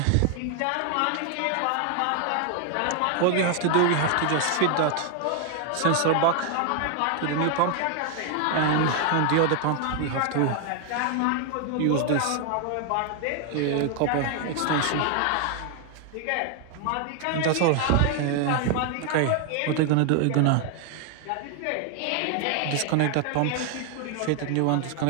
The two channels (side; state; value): both; different; correlation 0.00